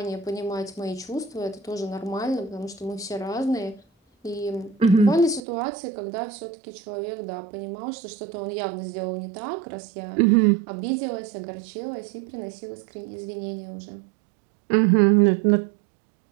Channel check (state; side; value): drops out; left; at 5.4 s